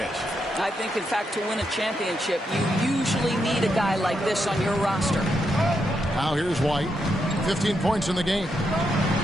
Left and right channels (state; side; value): normal; both; correlation 0.82